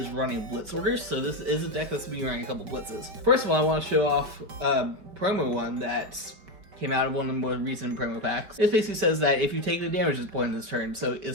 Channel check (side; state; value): left; late; 5.2 ms